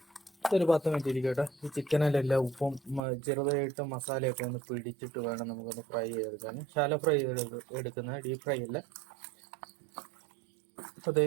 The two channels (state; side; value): drops out; left; at 3.1 s